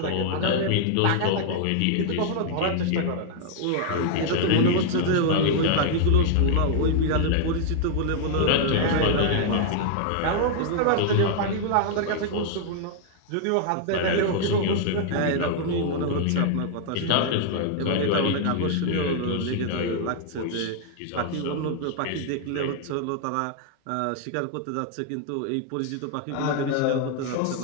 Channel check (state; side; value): different; both; correlation 0.00